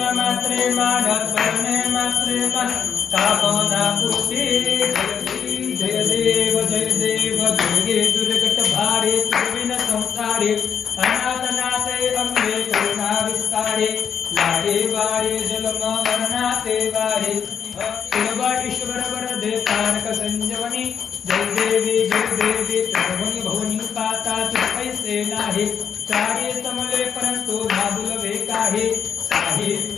मात्रे मान करणे मात्रे मन कामना पूर्ते। जय देव दुर्गे दुर्गट भारे तुर्विन संसारे अनाथनाथे अंगे करुणा विस्तारे। लाडे वारे जलम मरणाते वारे शिववाडीश्वर वरदे तारक संजवनी। जय देवी त्रिभुवनी भुवनी पाता पैसे नाही। चारे समले परंतु नाबुलवे काहे।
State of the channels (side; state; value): right; quieter; 7.5 dB